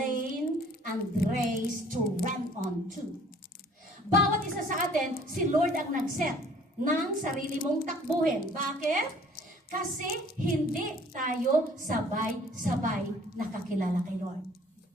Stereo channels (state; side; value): normal; both; correlation 0.54